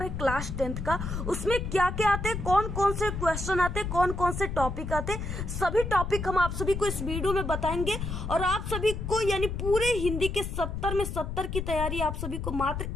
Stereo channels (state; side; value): noise; left; rumble, 4 dB below the sound